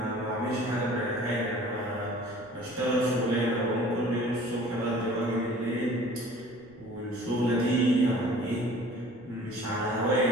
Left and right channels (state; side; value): noise; right; rumble, 26 dB below the sound